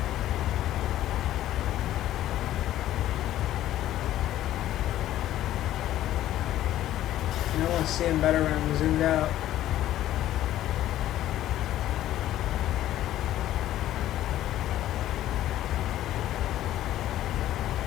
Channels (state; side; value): quieter; right; 13.3 dB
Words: I want to see him better when I'm zoomed out.